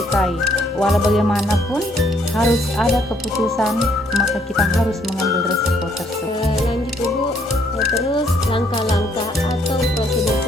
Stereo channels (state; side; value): normal; both; correlation 0.68